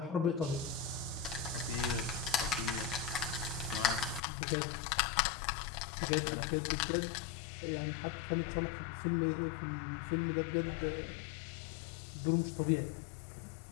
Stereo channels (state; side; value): drops out; right; at 4.2 s